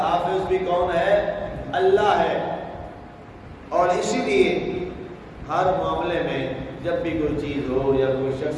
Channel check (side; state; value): both; identical; correlation 1.00